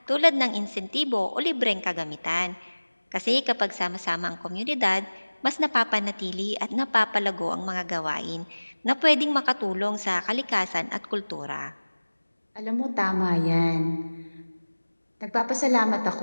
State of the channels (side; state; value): both; inverted; correlation -1.00